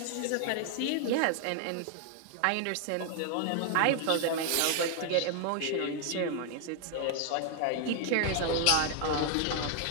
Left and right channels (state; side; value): different; both; correlation 0.00